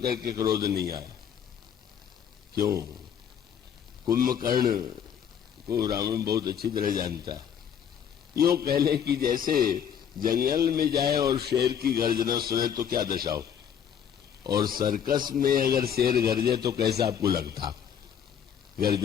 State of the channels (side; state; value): right; quieter; 8.5 dB